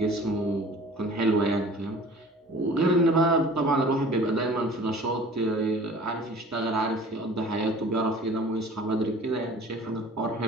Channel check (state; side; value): normal; both; correlation 0.46